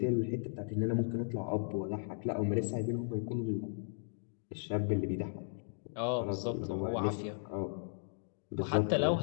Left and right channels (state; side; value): silent; right; digital silence